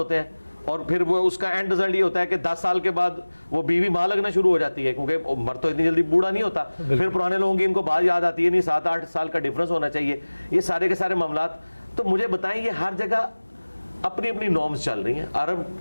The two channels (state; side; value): inverted; both; correlation -1.00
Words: ہیں. اور پھر وہ اس کا اینڈ رزلٹ یہ ہوتا ہے کہ 10 سال کے بعد وہ بیوی ماں لگنا شروع ہو جاتی ہے، کیونکہ مرد تو اتنی جلدی بوڑھا نہیں ہوتا. پھر پرانے لوگوں کی ان کو بات یاد آتی ہے، نہیں 7-8 سال کا ڈفرنس ہونا چاہیے. یہ سارے کے سارے معاملات تو مجھے بتائیں، یہ ہر جگہ اپنی اپنی نارمز چل رہی ہیں. عرب